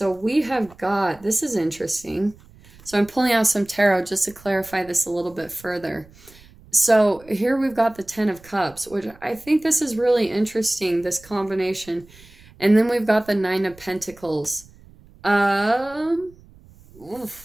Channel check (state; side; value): noise; right; rumble, 24 dB below the sound